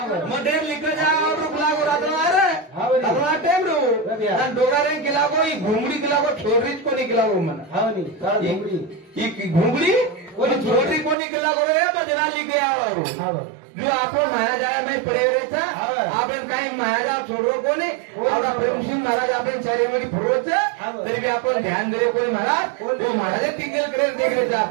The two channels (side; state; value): left; drops out; at 11.2 s